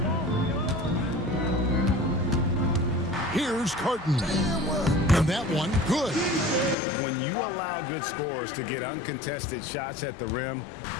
Here's Carton. And that one, good. When you allow good scorers to get uncontested shots at the rim,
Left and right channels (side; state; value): right; drops out; at 6.8 s